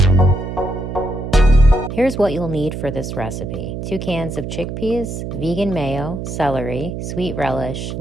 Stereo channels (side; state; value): right; noise; hum, 6 dB below the sound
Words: Here's what you'll need for this recipe. 2 cans of chickpeas, vegan mayo, celery, sweet relish,